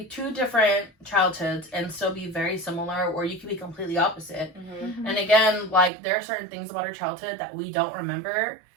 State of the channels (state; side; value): drops out; left; at 5.9 s